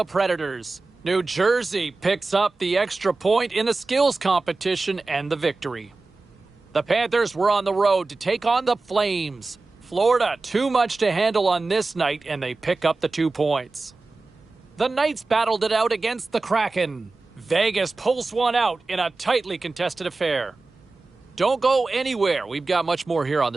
Predators. New Jersey picks up the extra point in the skills competition and the victory. The Panthers were on the road to take on the Flames. Florida, too much to handle on this night, and they pick up the 2 points. The Knights battled it out against the Kraken. Vegas pulls one out in a tightly contested affair. Don't go anywhere. We've got much more here on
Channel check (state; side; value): quieter; left; 3.6 dB